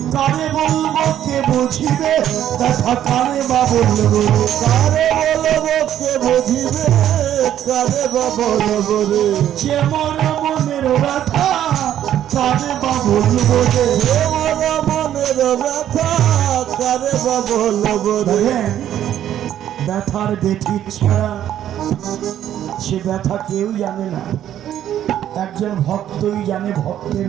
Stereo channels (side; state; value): left; quieter; 11.1 dB